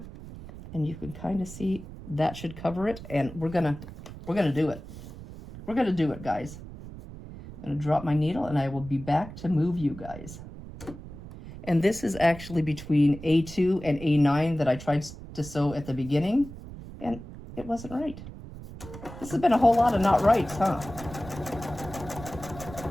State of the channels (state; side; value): noise; right; rumble, 14 dB below the sound